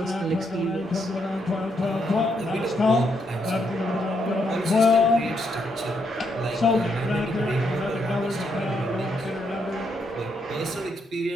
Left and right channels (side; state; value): both; normal; correlation 0.77